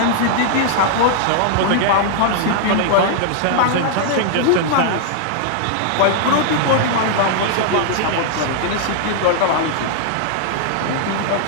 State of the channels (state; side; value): different; both; correlation -0.01